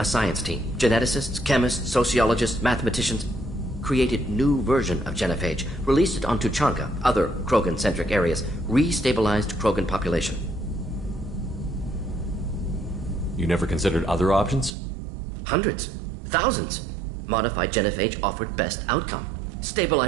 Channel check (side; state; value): left; drops out; at 14.7 s